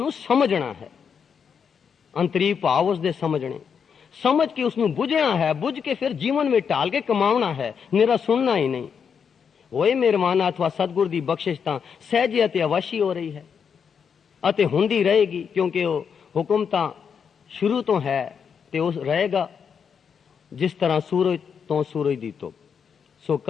समझना है, अंतरी भाव उसदे समझने, समझ के उसनू बुझना है, बुझ के फिर जीवन में ढाल के कमावना है, निरा सुनना ही नहीं। होए मेहरबाना अथवा सतगुर दी बख्शिश तां सहजे अते अवश्य हो रही है अते हुंदी रहेगी, क्योंकि वो हुक्म तां शुरू तो है ते उस रहेगा। जिस तरह सूरज तो सूरज दी धुप। सो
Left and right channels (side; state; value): right; quieter; 6.8 dB